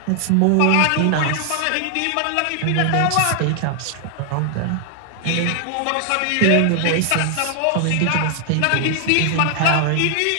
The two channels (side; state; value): both; different; correlation 0.00